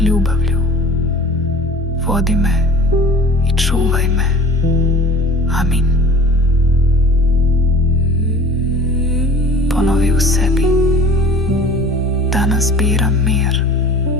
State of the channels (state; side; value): normal; both; correlation 0.44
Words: ljubavlju. Vodi me i čuvaj me. Amin. Ponovi u sebi: danas biram mir,